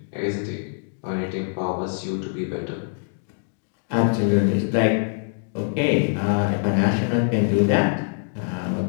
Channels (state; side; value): silent; right; digital silence